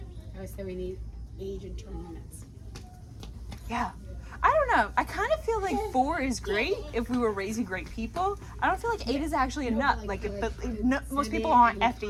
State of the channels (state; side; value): identical; both; correlation 1.00